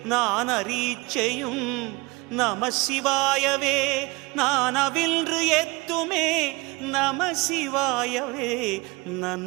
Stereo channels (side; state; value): left; quieter; 24.9 dB